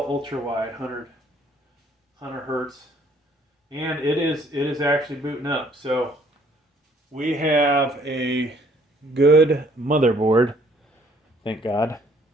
Ultrawide 100 Hertz, and it is actually booting up. So, we have a good motherboard, thank God.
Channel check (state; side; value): normal; both; correlation 0.62